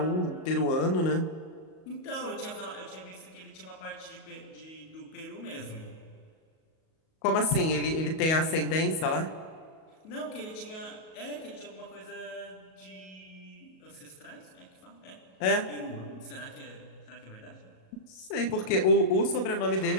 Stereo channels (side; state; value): right; late; 37 ms